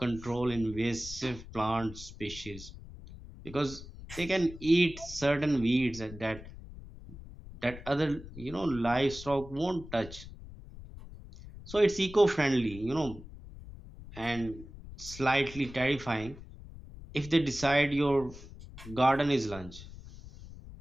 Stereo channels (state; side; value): noise; left; rumble, 15 dB below the sound